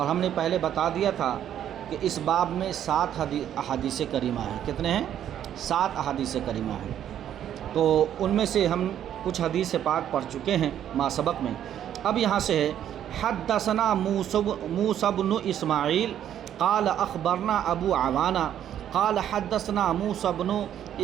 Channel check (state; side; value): quieter; left; 10.4 dB